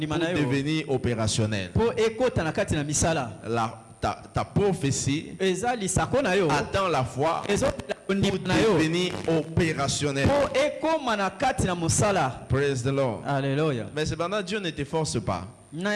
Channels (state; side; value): identical; both; correlation 1.00